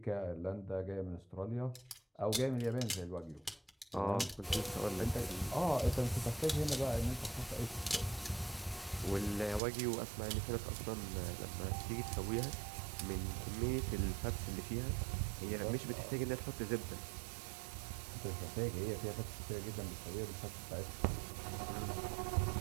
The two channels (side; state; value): left; drops out; at 9.6 s